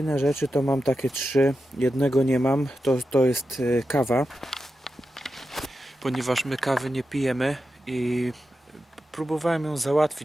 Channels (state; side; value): normal; both; correlation 0.90